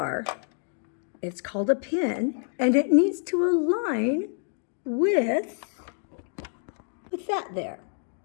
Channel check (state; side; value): silent; right; 60 dB below the other